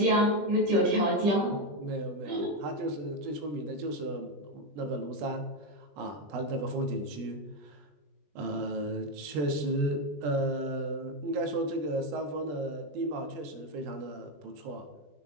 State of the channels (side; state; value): left; late; 20 ms